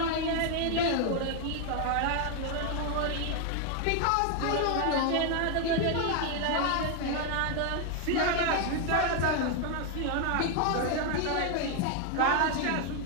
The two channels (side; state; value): both; different; correlation 0.01